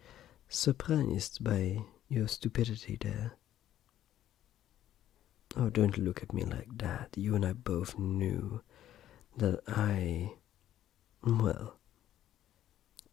surprised by your stupidity there. Oh, don't look at me like that. You and I both knew that well,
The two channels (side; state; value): right; quieter; 12.1 dB